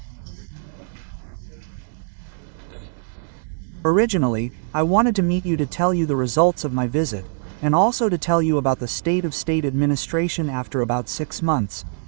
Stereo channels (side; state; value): left; silent; 64 dB below the other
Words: Originally, I wanted to meet you to tell you the results of my visit, and also to tell you about the state of state administration after about 6 months,